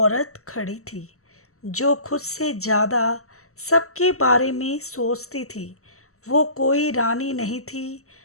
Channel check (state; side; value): late; right; 0.64 ms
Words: खड़ी थी, जो खुद से ज़्यादा सबके बारे में सोचती थी। वो कोई रानी नहीं थी,